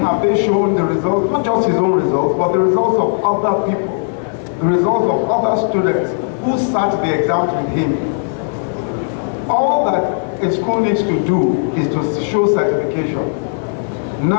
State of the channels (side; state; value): right; silent; digital silence